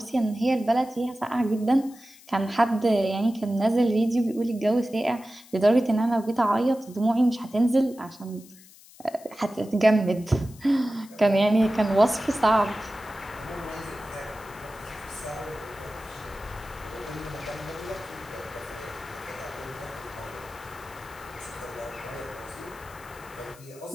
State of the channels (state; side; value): noise; left; hiss, 23 dB below the sound